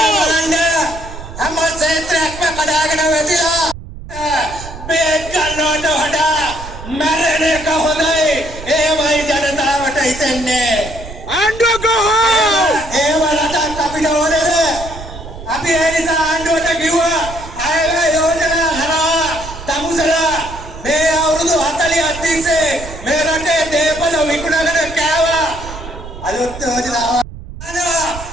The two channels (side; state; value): right; noise; rumble, 12 dB below the sound